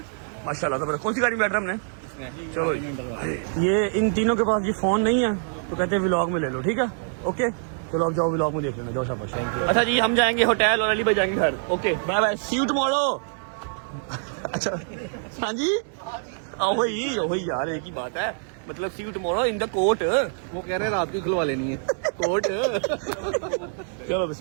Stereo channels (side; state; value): left; silent; digital silence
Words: माशाल्लाह। तो कौन सी गाड़ी में बैठ रहा हमने? चलो ये इन तीनों के पास ये फोन नहीं है तो कहते हैं व्लॉग में ले लो, ठीक है? ओके चलो अब जाओ व्लॉग में देख लेना, जाओ शाबाश। अच्छा जी हम जाएंगे होटल और अली भाई जाएंगे घर। Okay bye bye, see you tomorrow. अच्छा हाँ जी, वही यार एक ही बात है, मतलब see you tomorrow in the court. वो कह रहे हैं रात को खुलवा लेनी है कोर्ट। चलो